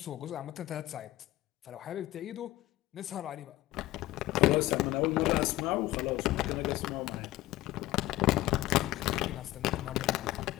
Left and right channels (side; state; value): right; quieter; 16.7 dB